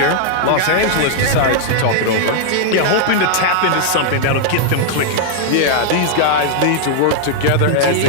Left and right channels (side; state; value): both; different; correlation -0.01